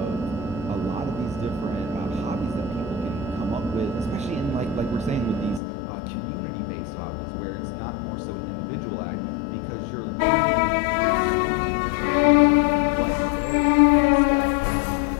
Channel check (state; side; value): drops out; right; at 5.6 s